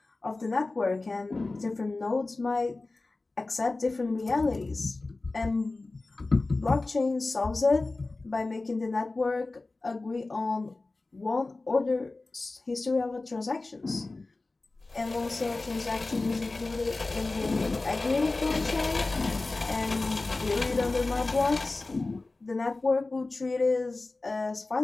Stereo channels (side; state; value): right; quieter; 3.3 dB